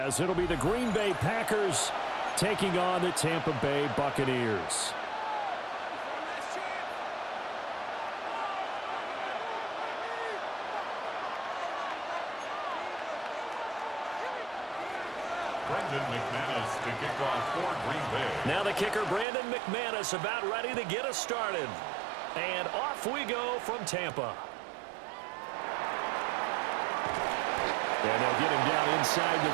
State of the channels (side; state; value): left; drops out; at 19.2 s